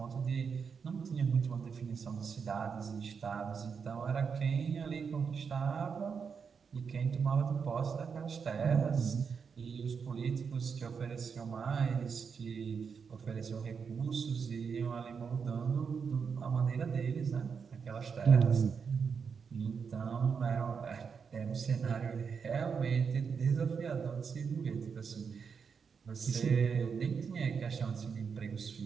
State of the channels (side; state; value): left; quieter; 6.1 dB